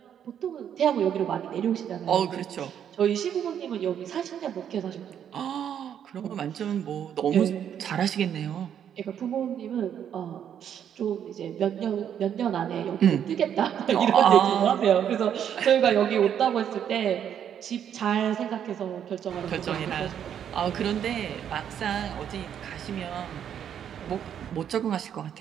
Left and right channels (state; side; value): quieter; left; 9.1 dB